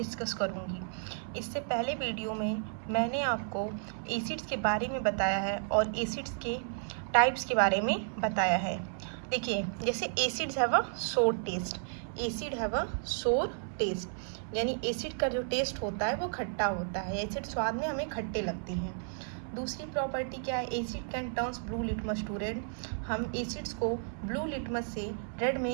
करूंगी। इससे पहले वीडियो में मैंने आपको एसिड्स के बारे में बताया है और एसिड्स के टाइप्स के बारे में बताया है। देखिए, जैसे एसिड्स हैव अ सोर टेस्ट, एसिड हैव अ सोर टेस्ट, यानी एसिड का जो टेस्ट होता है वो खट्टा होता है। एसिड स्वाद में हमें खट्टे लगते हैं। दूसरी प्रॉपर्टी क्या है, acid can turns blue litmus to red. हम एसिड्स को ब्लू लिटमस से रेड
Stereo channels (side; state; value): left; silent; 56 dB below the other